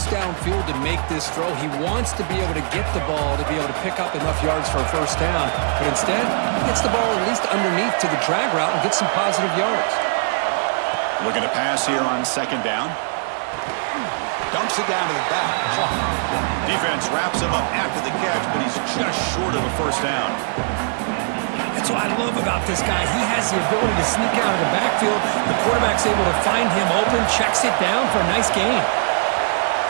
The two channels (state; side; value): silent; left; 65 dB below the other